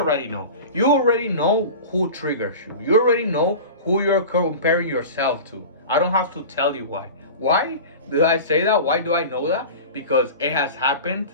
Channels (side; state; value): both; inverted; correlation -0.33